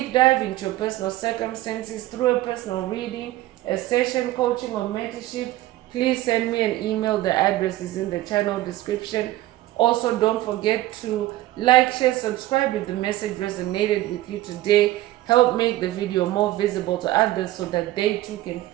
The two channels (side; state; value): left; quieter; 16.1 dB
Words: dive into your personal circumstances through a personal reading, a session, coaching, or mentorship, please send me an email. The address is in the channel description. Also, don't forget to like, share, subscribe if the message resonated with you today. Help make the video more visible to others so that they too can